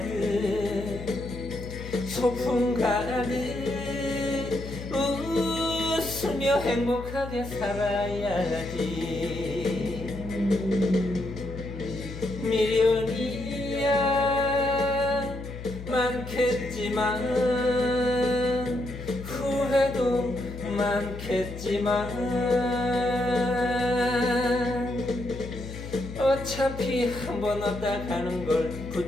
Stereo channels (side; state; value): left; noise; hum, 10 dB below the sound